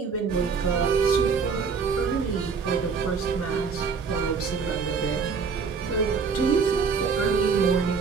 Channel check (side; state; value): left; quieter; 5.4 dB